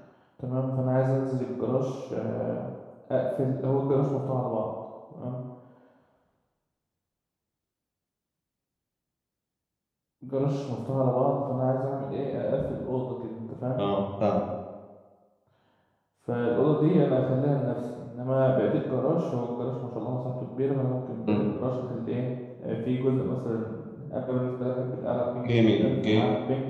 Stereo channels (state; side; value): identical; both; correlation 1.00